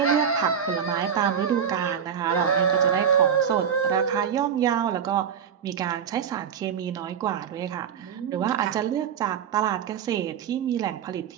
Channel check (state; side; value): quieter; left; 7.9 dB